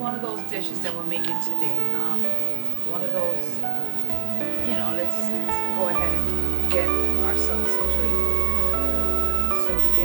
of those dishes that we're making today. One of those, you know, let's go ahead and get ourselves situated here. So we're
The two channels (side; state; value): left; silent; digital silence